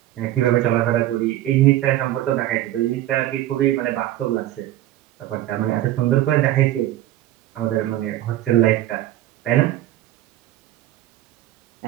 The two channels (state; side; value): quieter; left; 14.2 dB